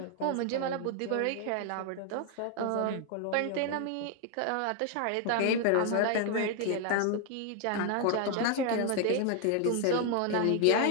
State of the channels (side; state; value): both; different; correlation 0.00